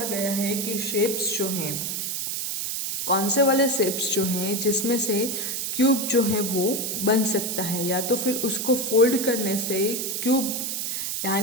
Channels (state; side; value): noise; right; hiss, 2 dB below the sound